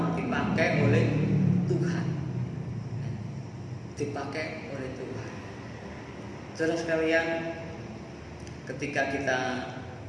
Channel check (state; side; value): identical; both; correlation 1.00